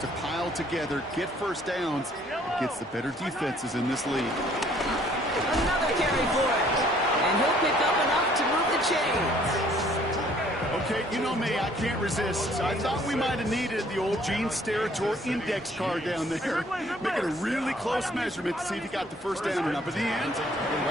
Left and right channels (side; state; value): both; normal; correlation 0.60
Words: pile together, get first downs, against the better defenses in this league. Another carry for it. And he'll pick up enough to move the chains. Okay, you know me, I can't resist. I thought we might have needed the old Gene Steratore index card down there. Making a really close measurement to see if he got the first down or not. But in the end, the